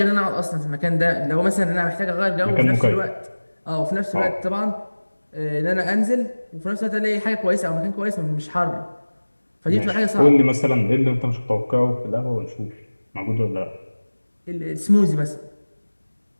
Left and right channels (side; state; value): both; inverted; correlation -1.00